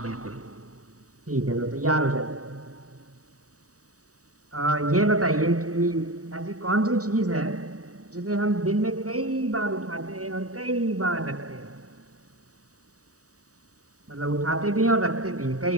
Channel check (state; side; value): late; left; 0.66 ms